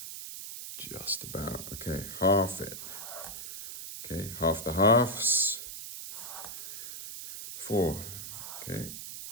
Just about, okay, half it. Okay, half the halves. 4, okay,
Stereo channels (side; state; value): right; noise; hiss, 9 dB below the sound